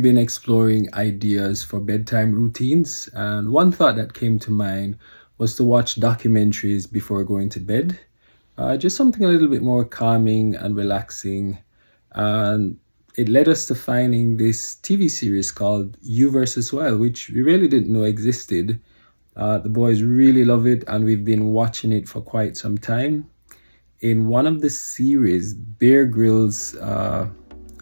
been exploring ideas for bedtime routines, and one thought that came to mind was to watch documentaries before going to bed. Just something a little bit more calming and relaxing. And it led us to finding this TV series called You versus Wild, which we really didn't know existed. The boys really love it, and we've been watching it for quite some time. In one of the series, Bear Grylls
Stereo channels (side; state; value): both; inverted; correlation -1.00